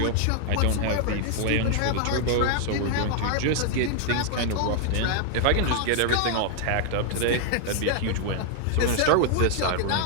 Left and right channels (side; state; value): both; different; correlation 0.00